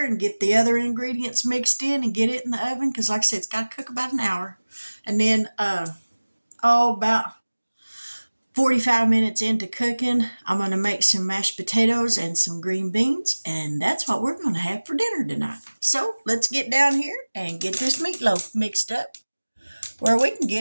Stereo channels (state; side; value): inverted; both; correlation -1.00